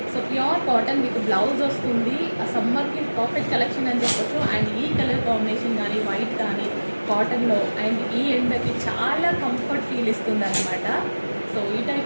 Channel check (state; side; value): inverted; both; correlation -1.00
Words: సో ప్యూర్ కాటన్ మీకు బ్లౌజ్ వస్తుంది. ఆ సమ్మర్కి పర్ఫెక్ట్ కలెక్షన్ అని చెప్పొచ్చు. అండ్ ఈ కలర్ కాంబినేషన్ కానీ వైట్ కానీ కాటన్లో అండ్ ఈ ఎండకి చాలా కంఫర్ట్ ఫీల్ ఇస్తుంది అనమాట. సో ఈ